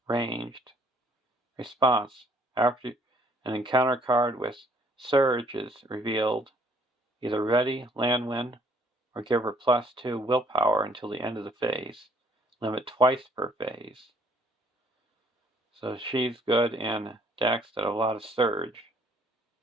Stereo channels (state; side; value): normal; both; correlation 0.62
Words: ranged. Response. After an encounter card with Surge is revealed, either ready Lanwin or give her +2 willpower until the end of the phase. Limit twice per phase. So she's good in decks that have a lot of Surge.